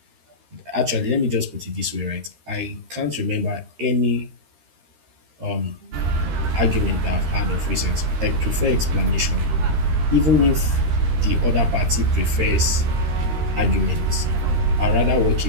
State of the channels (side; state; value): left; late; 13 ms